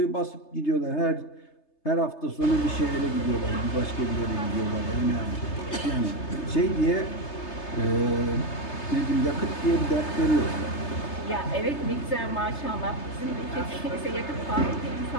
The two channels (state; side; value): late; right; 3.3 ms